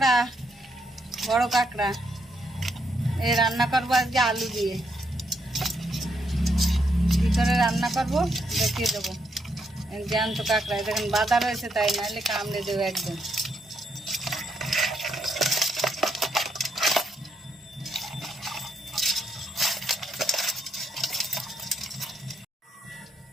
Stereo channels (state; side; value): normal; both; correlation 0.77